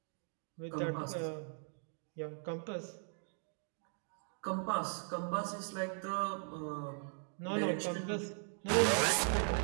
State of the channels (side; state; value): left; silent; 52 dB below the other